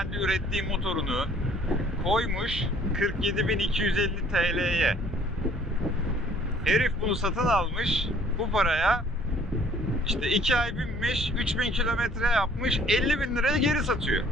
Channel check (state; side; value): normal; both; correlation 0.57